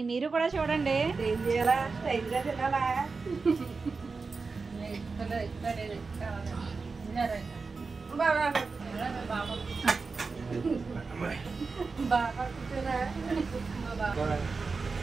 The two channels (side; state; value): left; quieter; 4.4 dB